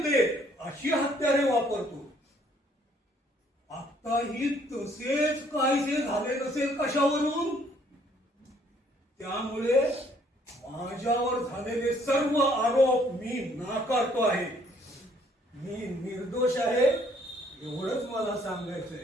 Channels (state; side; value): normal; both; correlation 0.64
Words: अशी हत्यारे वापरतो. आताही तसेच काहीसे झाले नसेल कशावरून? त्यामुळे माझ्यावर झालेले सर्व आरोप मी नाकारतो आहे. मी निर्दोष आहे एवढंच मला